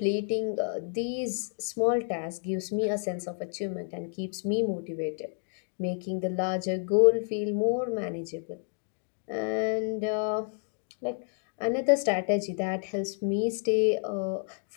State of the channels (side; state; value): right; silent; 58 dB below the other